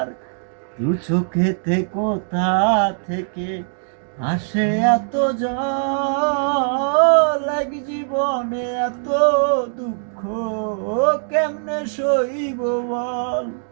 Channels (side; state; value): left; silent; digital silence